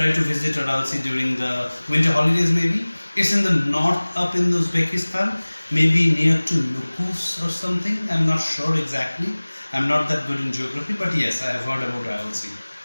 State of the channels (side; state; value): both; inverted; correlation -1.00